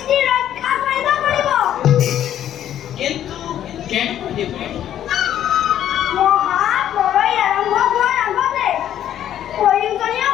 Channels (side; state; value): right; quieter; 11.0 dB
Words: ৰক্ষা কৰিব পাৰিব। কিন্তু কেনেকৈ দেৱৰী? মহাপ্ৰলয় আৰম্ভ হোৱাৰ আগতে প্ৰয়োজনীয়